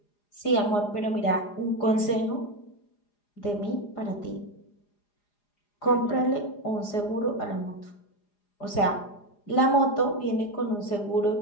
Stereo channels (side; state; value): right; late; 4.9 ms